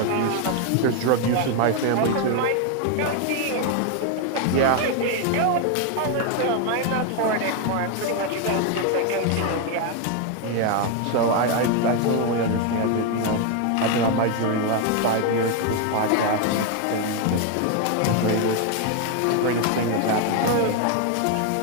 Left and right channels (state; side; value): different; both; correlation 0.01